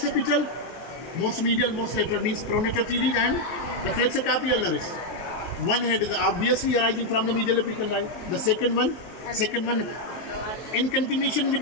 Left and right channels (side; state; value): right; late; 23 ms